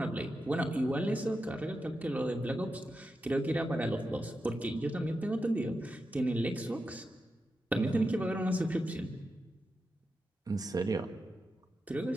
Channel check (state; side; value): normal; both; correlation 0.89